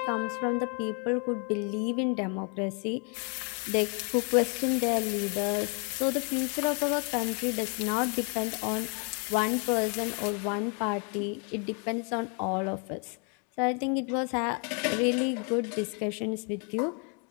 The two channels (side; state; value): right; quieter; 37.3 dB